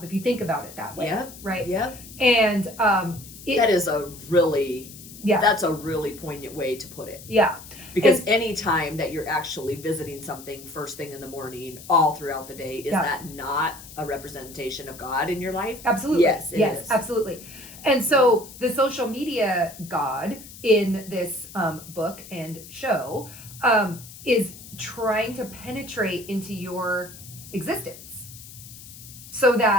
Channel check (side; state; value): left; noise; hiss, 16 dB below the sound